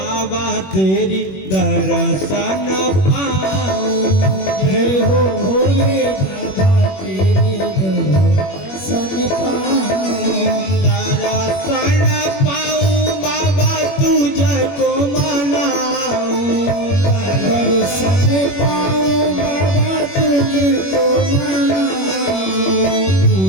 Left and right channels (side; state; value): right; late; 21 ms